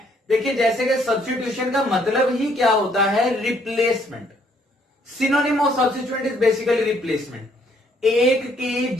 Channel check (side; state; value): both; normal; correlation 0.67